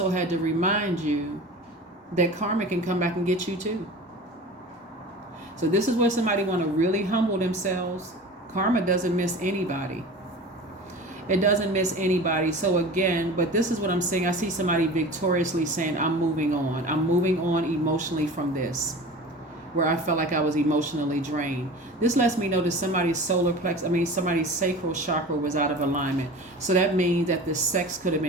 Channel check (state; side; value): normal; both; correlation 0.36